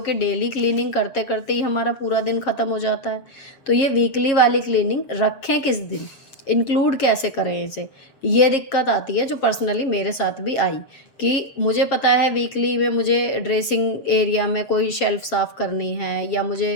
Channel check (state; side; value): late; right; 7.3 ms